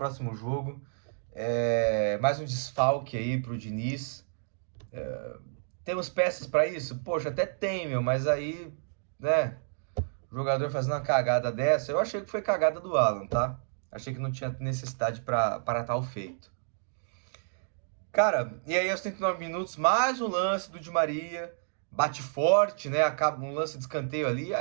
jogo. Mais um desfalque aí pro Diniz. Temos peças para isso? Poxa, até tem, meu. Mas aí, né? O jogador fazendo uma cagada dessa. Eu achei que foi cagada do Alan, tá? Achei que não tinha necessidade para tal feito. Cara, e aí aos 39 minutos, mais um lance do Di Maria. Bate forte, né? Acaba um lance de escanteio ali.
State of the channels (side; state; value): left; silent; digital silence